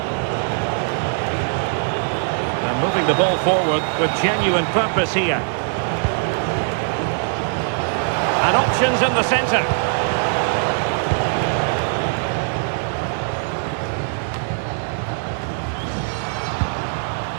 And moving the ball forward with genuine purpose here. And options in the centre.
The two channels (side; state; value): left; silent; 65 dB below the other